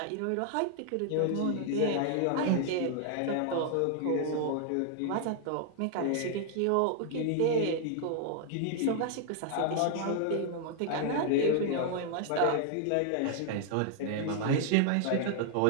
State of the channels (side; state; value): both; different; correlation 0.00